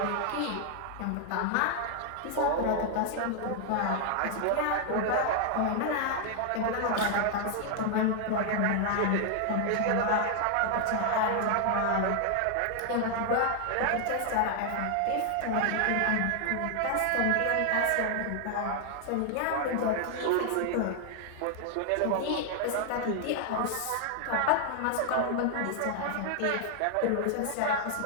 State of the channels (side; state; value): both; different; correlation 0.00